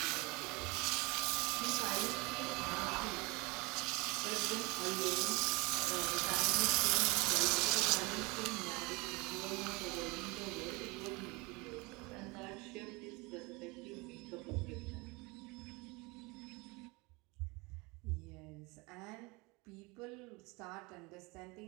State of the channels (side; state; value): left; quieter; 25.9 dB